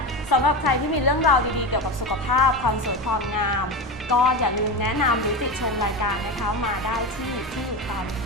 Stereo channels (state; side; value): normal; both; correlation 0.21